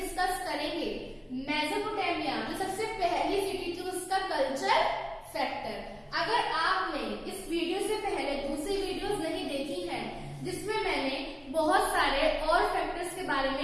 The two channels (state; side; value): identical; both; correlation 1.00